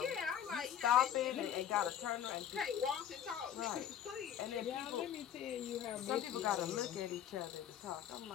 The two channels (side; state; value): right; quieter; 9.9 dB